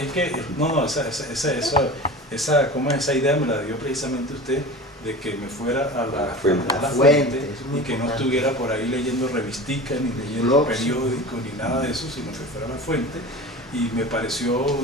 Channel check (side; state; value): both; normal; correlation 0.34